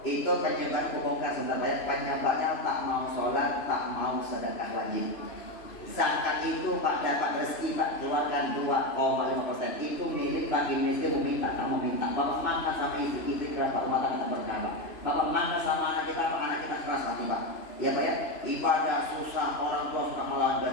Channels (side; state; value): right; late; 3.0 ms